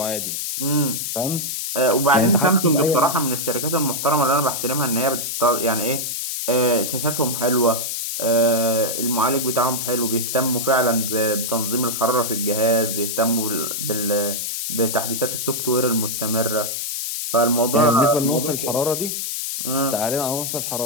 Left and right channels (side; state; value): left; noise; hiss, 3 dB below the sound